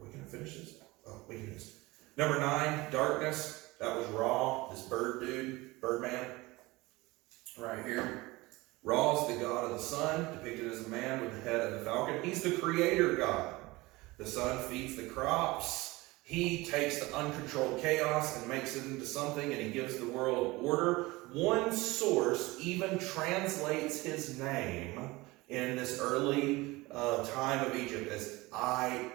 we going to finish this? Oh, we can do this. Number 9, darkness. That was Ra, this Birdman, right here. Ra is the god of the sun, depicted as a man with the head of the falcon. He's the creator god. The sun feeds the crops. He takes the uncontrolled chaos and makes it into something, and he gives the world order. One source even translates his name in this early time of Egypt as I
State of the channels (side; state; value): left; quieter; 21.5 dB